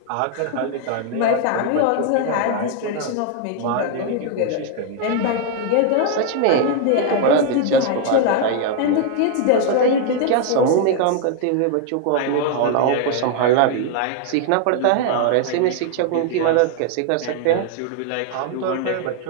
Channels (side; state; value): both; different; correlation 0.00